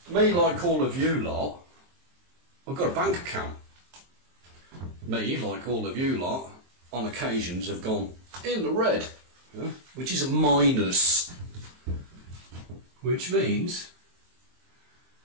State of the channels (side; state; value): left; late; 23 ms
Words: me, like all of you lot, I've got a bank account. Me, like all of you lot, on occasions have gone in the red, which is a minus, which means